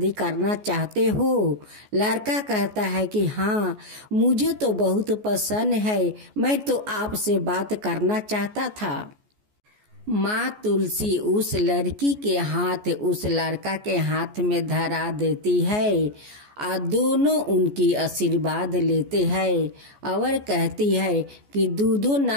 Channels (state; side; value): late; left; 14 ms